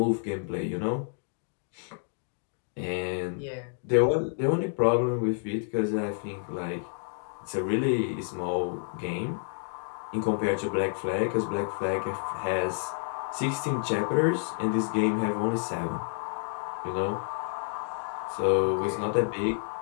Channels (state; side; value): silent; right; 58 dB below the other